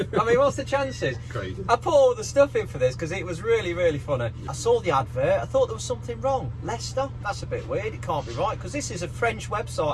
I mean, what's the chances? Crazy. I put all the stuff in for this because it was really, really funny. I saw the advert. I thought there was something wrong. Leicester? That's a bit weird. It can't be right because this is a French website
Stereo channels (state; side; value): identical; both; correlation 1.00